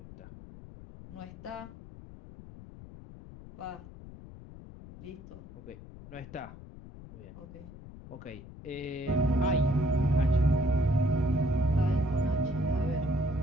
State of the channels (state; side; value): noise; left; rumble, 16 dB below the sound